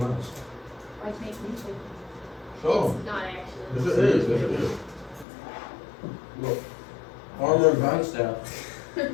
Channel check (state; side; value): drops out; right; at 5.2 s